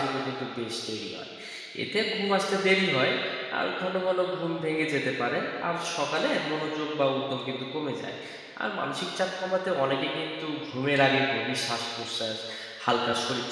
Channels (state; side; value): identical; both; correlation 1.00